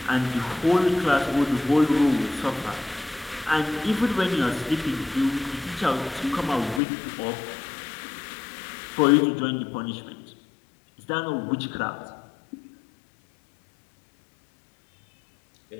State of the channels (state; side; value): drops out; right; at 6.8 s